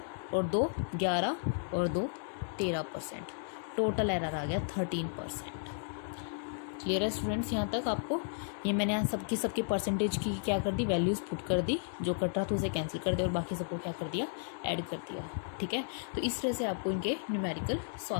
और 2 11 और 2 13%. टोटल एरर आ गया 13%. क्लियर है स्टूडेंट्स यहाँ तक आपको? ये मैंने यहाँ सबकी परसेंटेज की क्या कर दी, वैल्यूज़ पुट कर दी, जो कट रहा था उसे कैंसिल कर दिया और बाकी सबको क्या कर दिया, ऐड कर दिया. ठीक है. तो इस तरह से आपको इनके न्यूमेरिकल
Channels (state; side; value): silent; right; digital silence